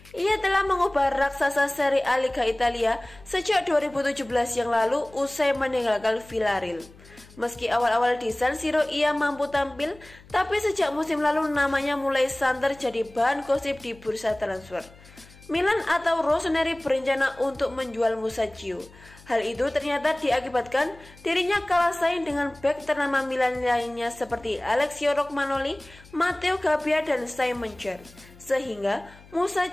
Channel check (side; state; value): left; noise; hum, 23 dB below the sound